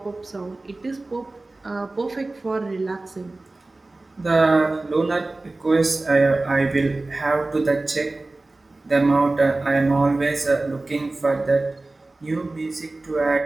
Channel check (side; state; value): left; quieter; 3.0 dB